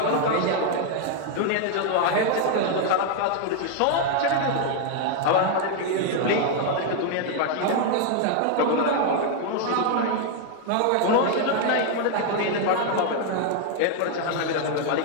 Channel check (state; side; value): different; both; correlation 0.00